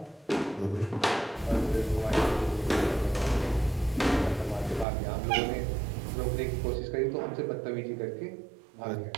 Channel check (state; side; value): drops out; left; at 4.9 s